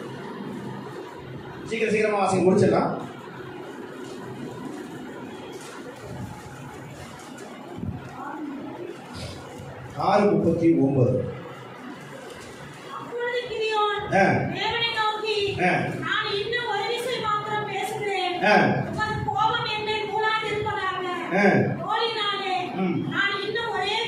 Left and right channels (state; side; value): identical; both; correlation 1.00